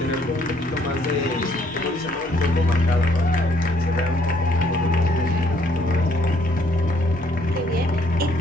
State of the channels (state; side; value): normal; both; correlation 0.66